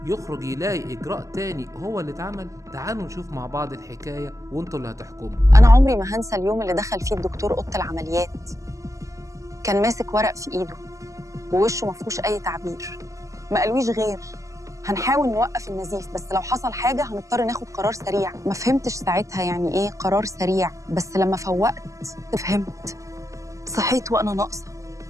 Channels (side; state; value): left; late; 0.16 ms